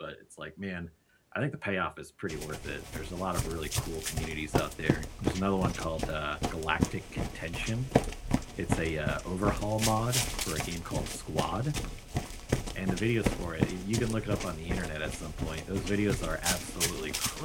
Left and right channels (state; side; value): identical; both; correlation 1.00